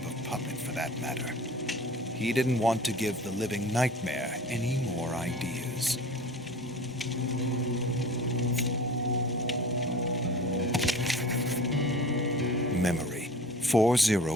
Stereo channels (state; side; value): normal; both; correlation 0.40